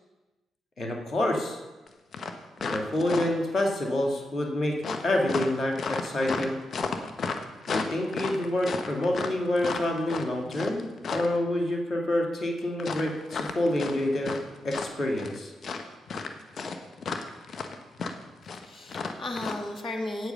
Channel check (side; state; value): both; normal; correlation 0.87